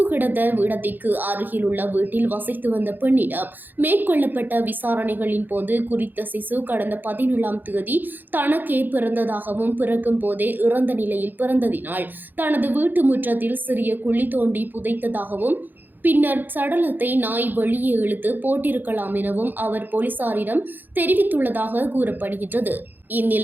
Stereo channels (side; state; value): left; late; 0.089 ms